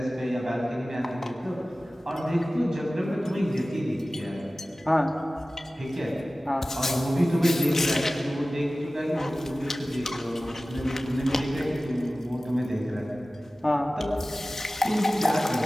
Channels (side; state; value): both; normal; correlation 0.96